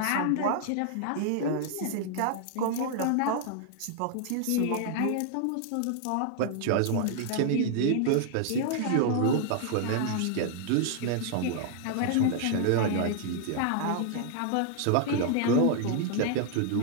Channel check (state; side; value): different; both; correlation 0.00